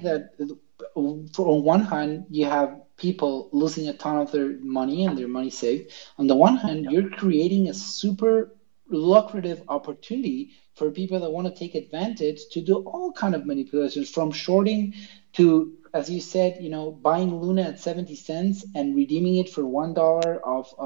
that on one hand you have people losing a ton of their money and their money saved. On the one hand, you're creating a super lucrative opportunity for people that want to take advantage to do all kind of manipulations, from shorting to, as you said, buying Luna at 70 cents and redeeming it for $1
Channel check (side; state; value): left; silent; 63 dB below the other